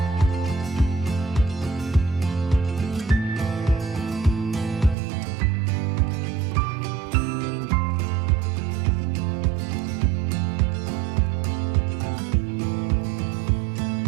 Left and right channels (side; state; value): left; drops out; at 5.0 s